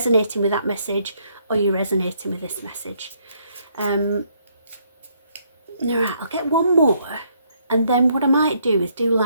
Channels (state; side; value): inverted; both; correlation -0.71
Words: with that message, or you're resonating with this message. All right, I'll get one more, and then what I might do is do